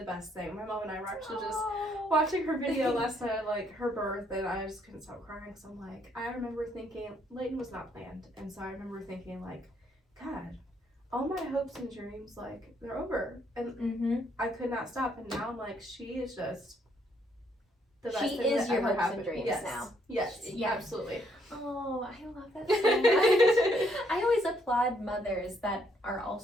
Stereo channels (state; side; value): normal; both; correlation 0.70